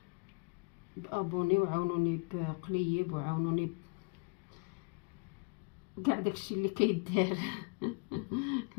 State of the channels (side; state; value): right; quieter; 32.5 dB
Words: بابوني، وعاونوني بقليب، وعاونوني كاع داكشي اللي كيدار.